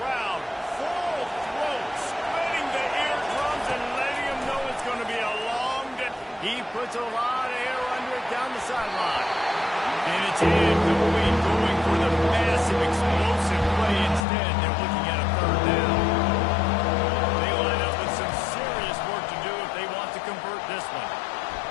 full throat, splitting the eardrums and letting him know it's going to be a long day. He puts a lot of air under it down the sideline. And it's incomplete, going for the massive explosive play instead. They're looking at a third down. They line up with some serious work to do if they want to convert this one.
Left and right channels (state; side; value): drops out; right; at 14.2 s